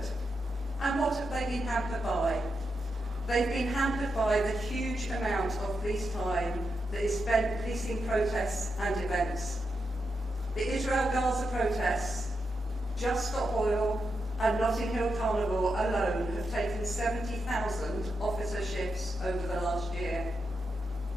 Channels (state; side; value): normal; both; correlation 0.85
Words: And what have they been hampered by? They've been hampered by the huge amount of police time that is spent policing protests and events. The Israel-Gaza protests, Just Stop Oil and Notting Hill Carnival alone have taken 70,000 officer shifts over the last year.